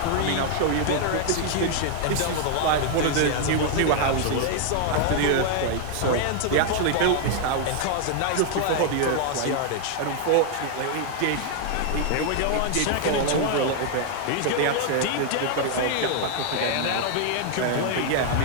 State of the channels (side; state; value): both; different; correlation 0.00